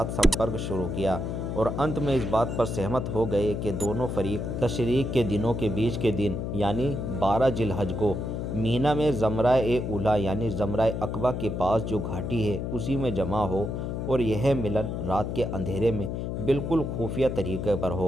سمپرک شروع کیا اور انت میں اس بات پر سہمت ہو گئے کہ دونوں فریق تشریق کے دنوں کے بیچ کے دن یعنی 12 ذی الحج کو مینا میں زمرہ اولا یعنی زمرہ عقبہ کے پاس جو گھاٹی ہے اسی میں جمع ہو اور یہ ملن رات کے اندھیرے میں بالکل خفیہ طریقے پر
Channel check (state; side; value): noise; left; hum, 3 dB below the sound